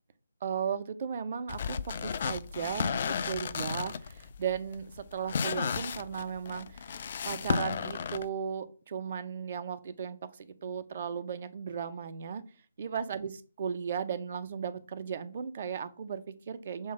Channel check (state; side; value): inverted; both; correlation -0.67